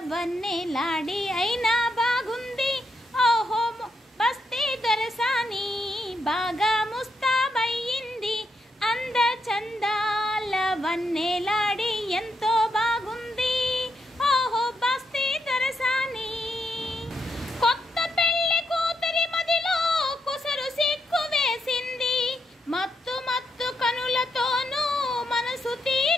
వన్నెలాడి అయినా బాగుంది. ఓహో బస్తీ దొరసాని బాగా ముస్తాబయ్యింది, అంద చందాల వన్నెలాడి ఎంతో బాగుంది. ఓహో బస్తీ దొరసాని కొత్త పెళ్లి కూతురి మదిలో కుసరు సిగ్గు వేసింది, మత్తు మత్తు కనులతోనూ మనసు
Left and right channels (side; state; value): both; normal; correlation 0.80